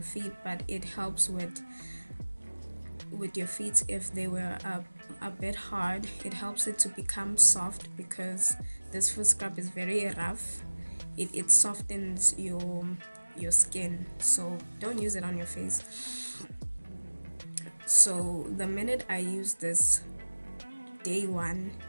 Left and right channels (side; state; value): both; inverted; correlation -1.00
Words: feet, but it helps with with your feet if they were a bit hard. It helps it to become soft because this foot scrub is very rough. It softens your skin, so don't use it on your face. So the minute I used this, day one,